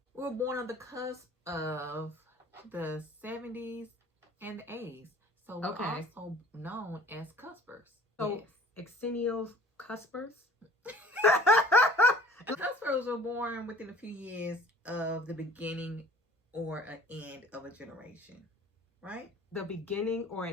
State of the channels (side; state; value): both; normal; correlation 0.49